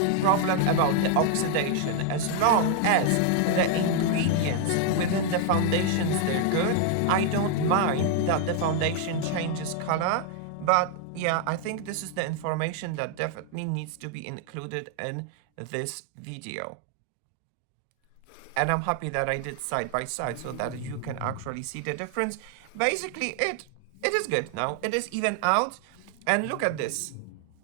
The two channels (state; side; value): different; both; correlation 0.00